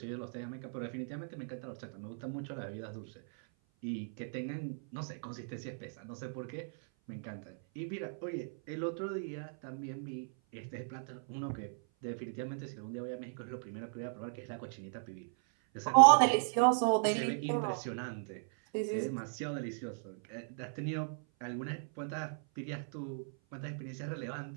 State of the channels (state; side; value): silent; left; 53 dB below the other